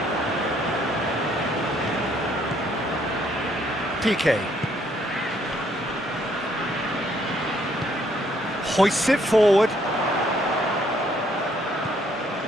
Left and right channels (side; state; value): both; normal; correlation 0.68